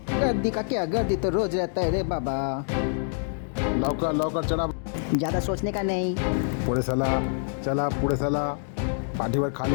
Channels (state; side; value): silent; right; 61 dB below the other